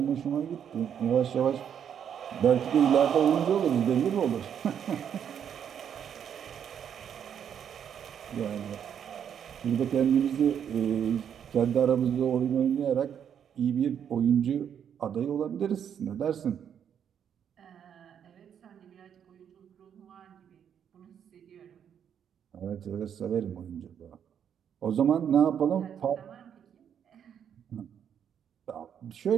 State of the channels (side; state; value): left; quieter; 8.5 dB